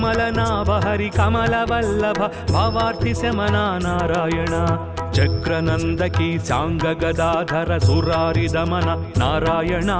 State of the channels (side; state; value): both; identical; correlation 1.00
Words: हरि कमलवल्लभ भवार्ति शमना नारायण चक्रनंदकी सांग गदाधर सुरारि दमन नारायण